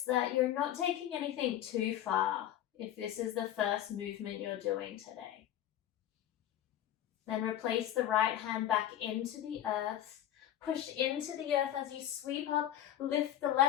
that you're not taking anything too far if this is the first movement you're doing today. Then replace the right hand back into the earth. Push into the earth as you sweep up. Lift the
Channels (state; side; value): quieter; right; 11.6 dB